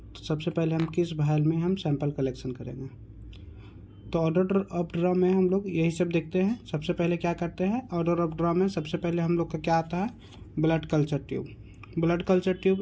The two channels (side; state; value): both; identical; correlation 1.00